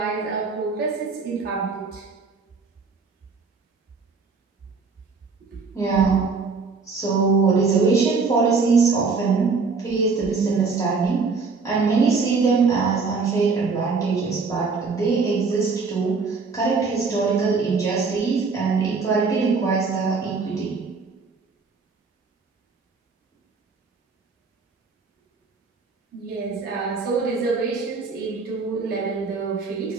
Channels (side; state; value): left; quieter; 4.6 dB